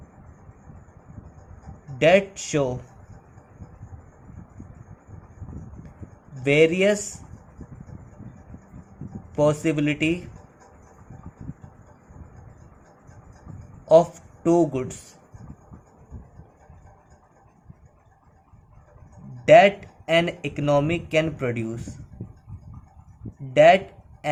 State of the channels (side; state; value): both; identical; correlation 1.00